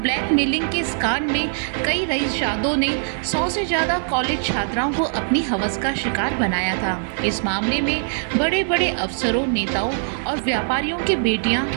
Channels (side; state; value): left; silent; 64 dB below the other